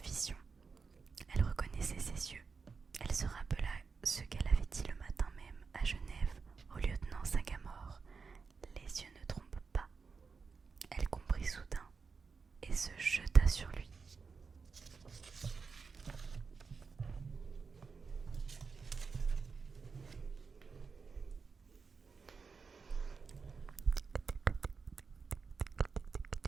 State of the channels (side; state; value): left; quieter; 5.1 dB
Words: vision. Elle reconnaissait ses yeux. Elle se rappela ce qu'elle avait dit le matin même à Genève au lieutenant Sagamore. Les yeux ne trompent pas. Elle comprit soudain et se jeta sur lui.